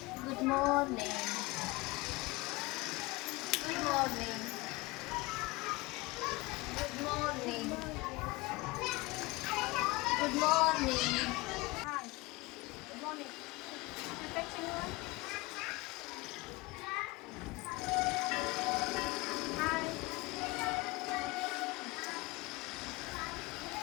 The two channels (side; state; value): right; quieter; 22.9 dB